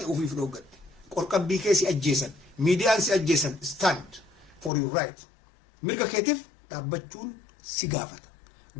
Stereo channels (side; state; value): right; drops out; at 4.7 s